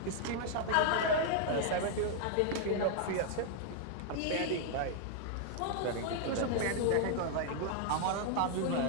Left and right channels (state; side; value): different; both; correlation 0.00